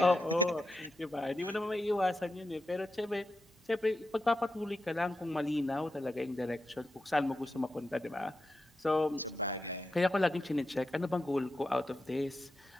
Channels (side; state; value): both; normal; correlation 0.88